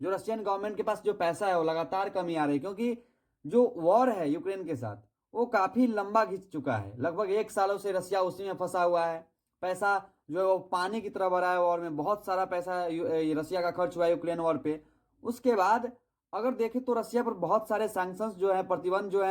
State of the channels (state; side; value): identical; both; correlation 1.00